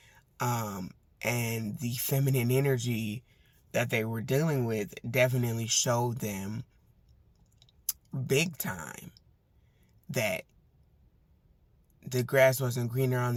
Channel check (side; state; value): both; identical; correlation 1.00